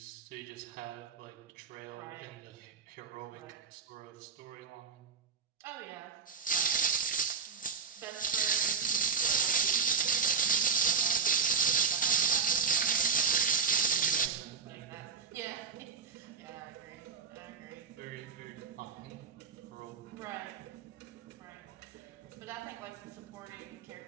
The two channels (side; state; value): left; quieter; 5.6 dB